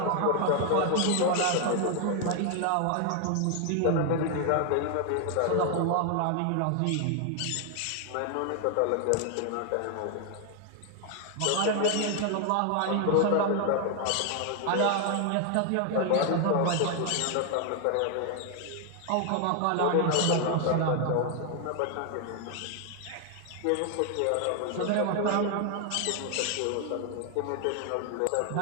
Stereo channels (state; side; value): different; both; correlation 0.00